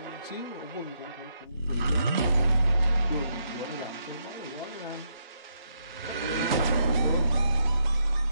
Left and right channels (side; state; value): both; inverted; correlation -0.78